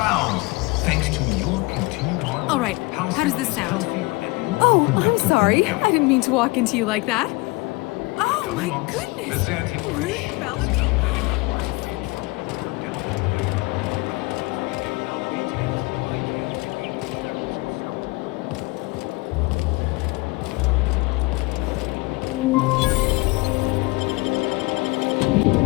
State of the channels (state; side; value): quieter; right; 24.3 dB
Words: thanks to your continued hard work. All right, how does this sound? Oh, I'm sorry. I didn't mean to walk into you like that. Oh my goodness! Ruth Bellamy.